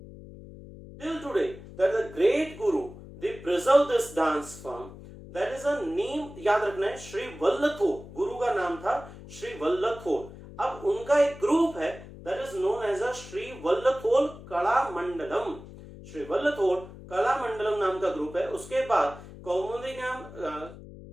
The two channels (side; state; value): left; noise; hum, 16 dB below the sound